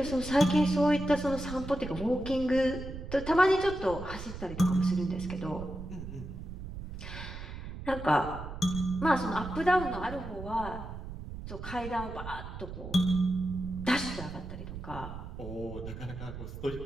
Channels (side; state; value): right; noise; rumble, 9 dB below the sound